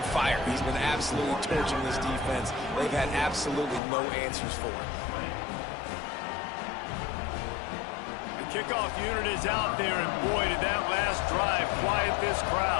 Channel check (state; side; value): drops out; right; at 3.8 s